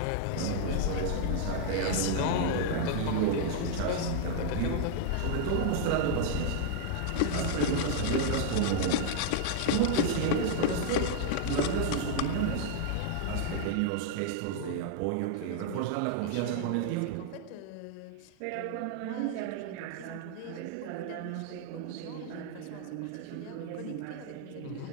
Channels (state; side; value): different; both; correlation 0.00